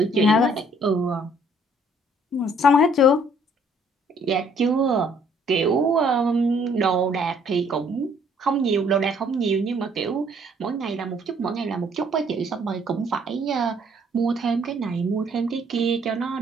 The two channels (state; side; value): normal; both; correlation 0.62